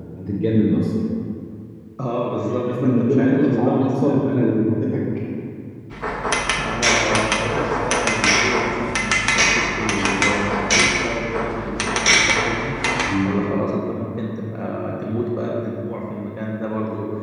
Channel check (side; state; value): both; identical; correlation 1.00